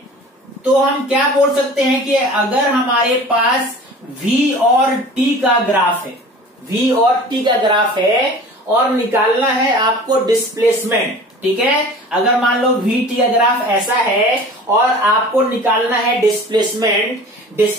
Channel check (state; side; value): normal; both; correlation 0.42